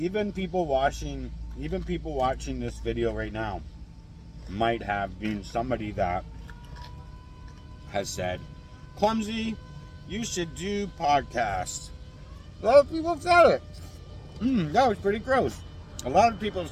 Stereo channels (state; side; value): identical; both; correlation 1.00